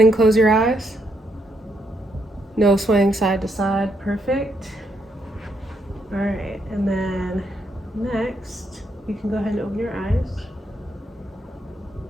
close your eyes. No swaying side to side. Perfect. All right, and then next, you can go ahead and open your eyes.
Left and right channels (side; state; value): both; normal; correlation 0.77